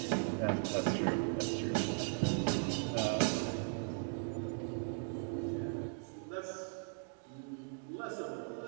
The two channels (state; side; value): silent; left; 52 dB below the other